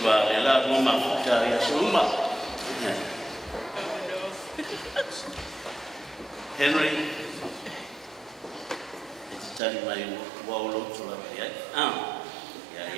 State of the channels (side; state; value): left; drops out; at 9.6 s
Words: wa ela mo mafuta ya suma. Henry, it's telling my wall to la ya.